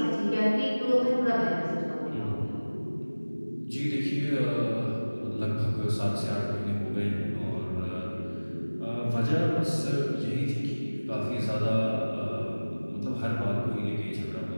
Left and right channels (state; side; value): inverted; both; correlation -1.00